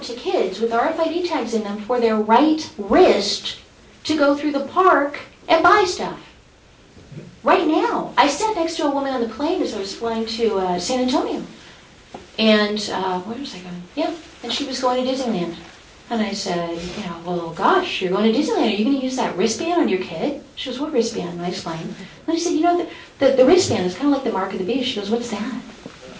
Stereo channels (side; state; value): both; identical; correlation 1.00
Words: to kids with RFID tags in them for their right wrist to go through the park and buy stuff. Right now, I sat next to a woman on the plane as I was flying to San Antonio. And where was I going? Yeah, and she was going to Disneyland. And I said, well, gosh, you're going to Disneyland. Are you going to use that wristband on your kid? She goes, what wristband? And I explained. And I said, the wristband is kind of like the mark of the beast. She goes, what's that?